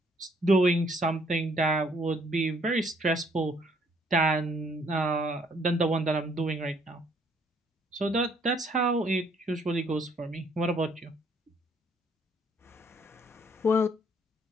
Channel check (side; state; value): both; normal; correlation 0.65